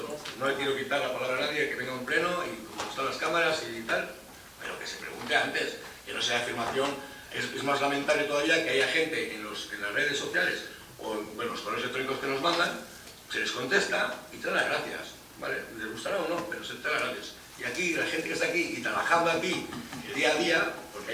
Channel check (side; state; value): both; identical; correlation 1.00